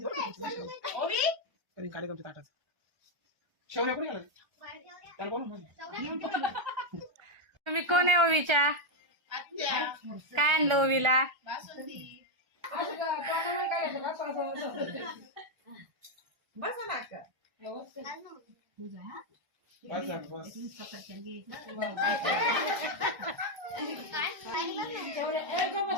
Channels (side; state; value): left; late; 1.4 ms